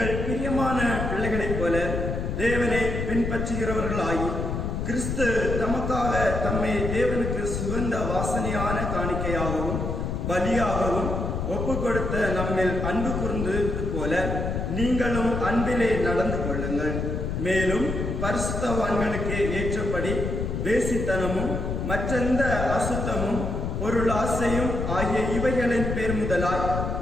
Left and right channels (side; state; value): left; noise; rumble, 2 dB below the sound